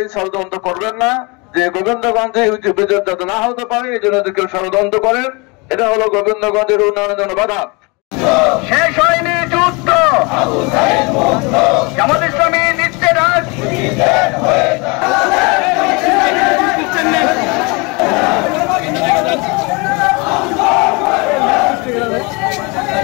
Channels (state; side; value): quieter; right; 28.6 dB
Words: ষড়যন্ত্র করবেন না যে গোবিন্দগঞ্জে বিদ্যুৎ যাতে না হতে পারে এই জন্য কেউ ষড়যন্ত্র করেন। এটা হলো গোবিন্দগঞ্জের উন্নয়নের জন্য বাধা। শেষ হয়নি যুদ্ধ, জামাত ইসলামী নিচ্ছে রাজ।